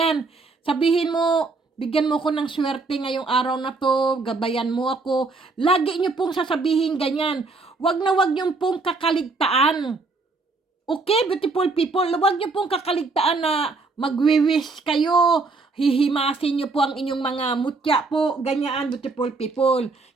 Sabihin mo, bigyan mo ko ng swerte ngayong araw na to, gabayan mo ako. Lagi nyo pong sasabihin ganyan. Wag na wag nyo pong kakaligtaan. Okay, beautiful people, wag nyo pong kakaligtaan na magwi-wish kayo. Hihimasin nyo po ang inyong mga mutya po, ganyan, beautiful people.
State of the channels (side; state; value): left; quieter; 3.8 dB